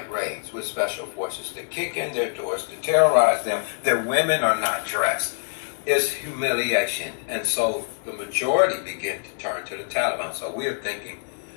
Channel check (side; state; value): right; silent; digital silence